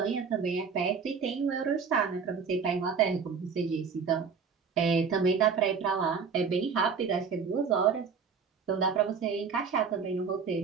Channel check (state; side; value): quieter; left; 5.9 dB